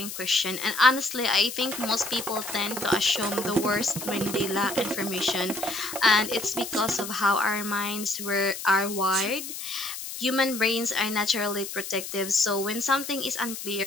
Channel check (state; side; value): noise; left; hiss, 8 dB below the sound